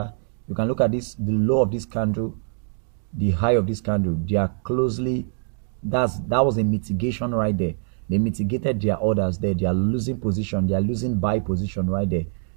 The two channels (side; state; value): left; silent; digital silence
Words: You can look at this, the low of this candle, the high of this candle. They are closely, that was a mitigation right there. They mitigated their orders there. They are losing position. They are losing buy position right there.